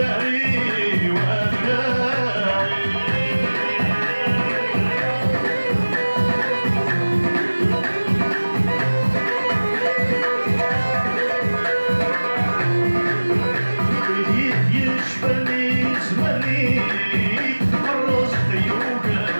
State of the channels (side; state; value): both; inverted; correlation -1.00